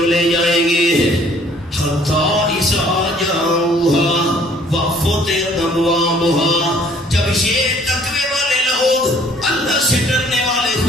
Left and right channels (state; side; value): normal; both; correlation 0.58